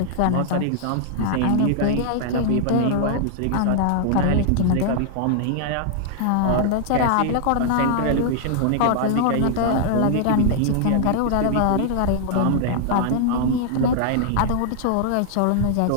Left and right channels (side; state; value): both; different; correlation -0.01